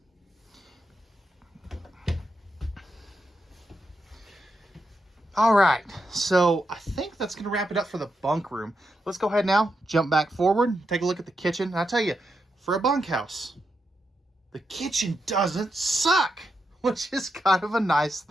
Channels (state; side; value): normal; both; correlation 0.84